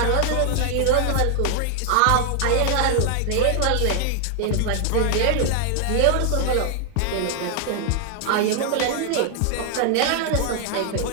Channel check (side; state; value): both; different; correlation 0.00